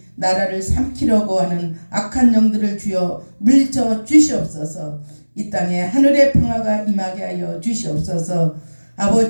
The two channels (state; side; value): inverted; both; correlation -1.00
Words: 나라를 삼키려고 하는 악한 영들을 주여 물리쳐 주시옵소서. 이 땅에 하늘의 평화가 임하게 하여 주시옵소서.